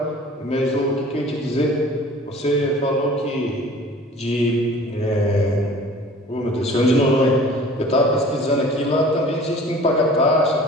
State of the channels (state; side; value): normal; both; correlation 0.46